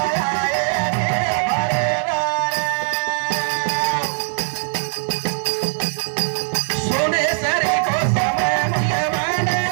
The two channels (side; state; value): left; silent; digital silence